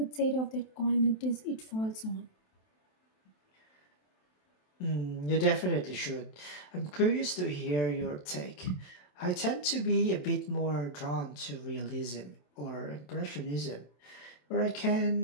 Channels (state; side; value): late; right; 27 ms